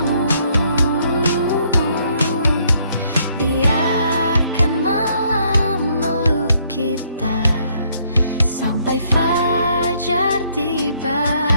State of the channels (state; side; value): inverted; both; correlation -0.68